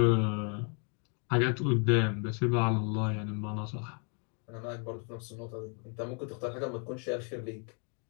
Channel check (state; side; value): quieter; right; 39.4 dB